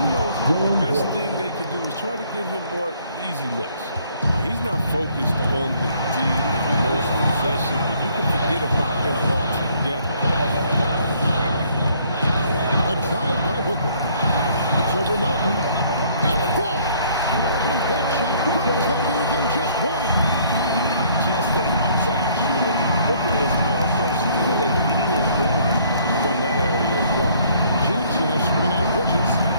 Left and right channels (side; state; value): both; inverted; correlation -0.62